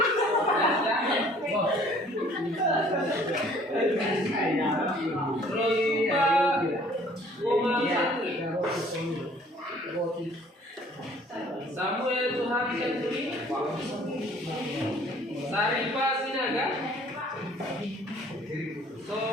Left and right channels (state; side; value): normal; both; correlation 0.55